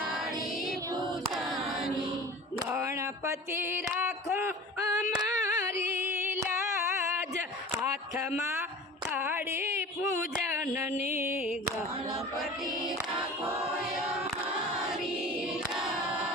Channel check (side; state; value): both; normal; correlation 0.39